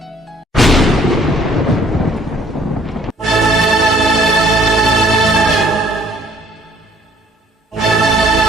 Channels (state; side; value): normal; both; correlation 0.60